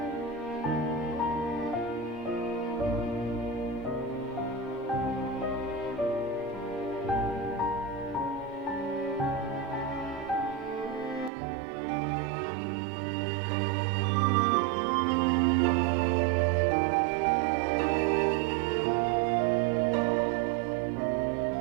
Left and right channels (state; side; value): drops out; left; at 11.3 s